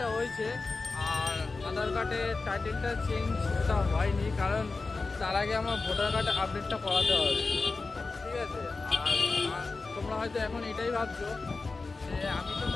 হয়েছে আর আধার কার্ডের টাইটেলটা চেঞ্জটা হয়নি, কারণ তার আগে আমার ভোটার কার্ডের আপডেটটা করাতে হবে, ঠিক আছে। আর তোমরা হয়তো এখন এটাই ভাবছো যে আমি তো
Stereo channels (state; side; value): quieter; right; 3.9 dB